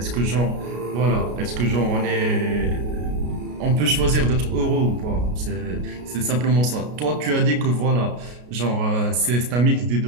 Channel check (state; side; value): late; left; 33 ms